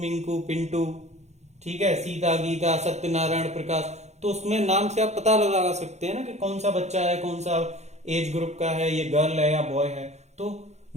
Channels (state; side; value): late; left; 0.32 ms